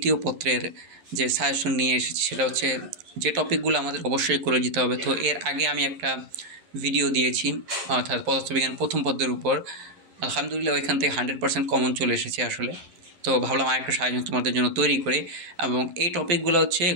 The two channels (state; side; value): late; left; 11 ms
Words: পত্রের যে সাজেশন নিয়ে এসেছি সেটা হচ্ছে যে টপিকগুলো আমাদের অবশ্যই করে যেতে হবে। তো এর আগে আমি একটা ভিডিও দিয়েছি অর্থাৎ পদার্থবিজ্ঞান প্রথম পত্রের উপর। আলহামদুলিল্লাহ ওইখান থেকে 100% কমন চলে এসেছে আসলে। তো ভাবলাম আরেকটা সাজেশন তোমাদের জন্য তৈরি করে, এবং এই টপিকগুলো হচ্ছে